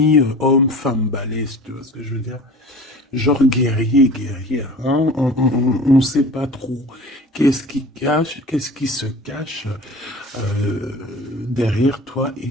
balèze, tu vois ce que je veux dire? Genre guerrier, guerrière, hein? On ne sait pas trop qu'est-ce qui se cache derrière toi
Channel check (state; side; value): normal; both; correlation 0.40